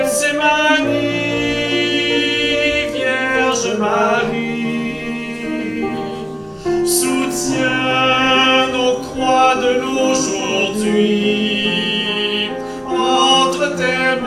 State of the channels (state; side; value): identical; both; correlation 1.00